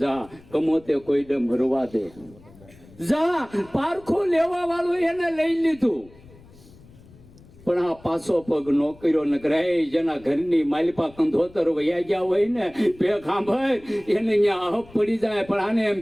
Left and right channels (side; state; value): left; noise; rumble, 24 dB below the sound